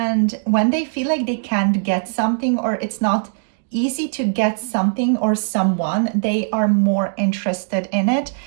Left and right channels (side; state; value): left; silent; 66 dB below the other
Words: when they feel like they can't get something, or it's not easy to get something or someone, they are more interested in it,